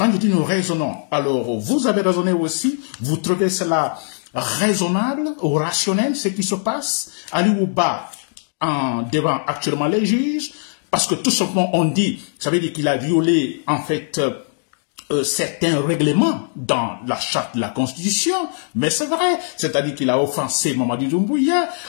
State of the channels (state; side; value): silent; right; digital silence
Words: je dis nous raisonnons, alors vous avez raisonné aussi, vous trouvez cela raisonnable ou rationnel, ce qui se passe? Ali Ouba devant actuellement les juges, parce que tout simplement on dit, ça veut dire qu'il a violé en fait certains règlements dans la charte de la Constitution, mais c'est vrai, c'est-à-dire qu'il a offensé Mamadi Doumbouya,